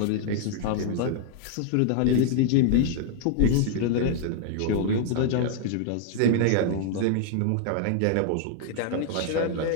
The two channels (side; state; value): both; different; correlation 0.00